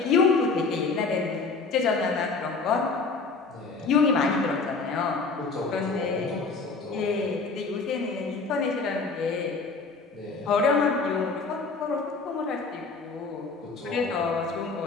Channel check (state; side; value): quieter; right; 4.3 dB